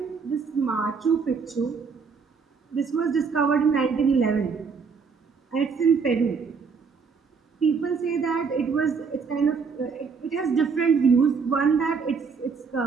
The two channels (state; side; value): quieter; left; 5.4 dB